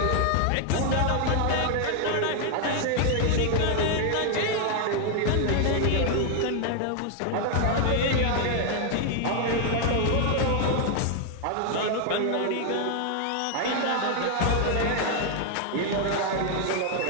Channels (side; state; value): both; different; correlation 0.00